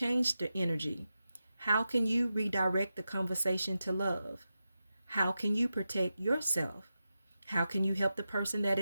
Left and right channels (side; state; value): both; inverted; correlation -0.91